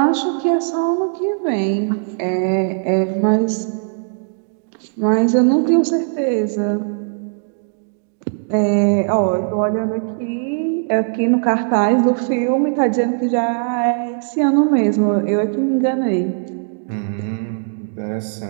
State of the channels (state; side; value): silent; left; digital silence